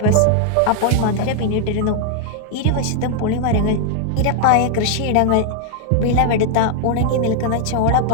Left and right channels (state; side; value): different; both; correlation 0.00